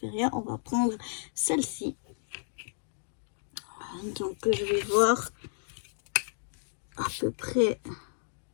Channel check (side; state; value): right; silent; digital silence